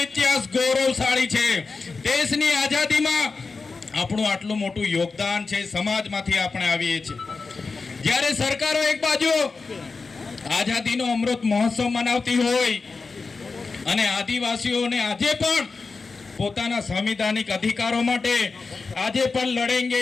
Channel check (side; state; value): right; quieter; 4.3 dB